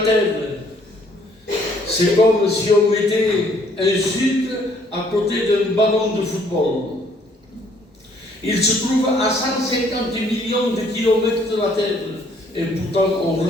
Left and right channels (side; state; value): both; normal; correlation 0.63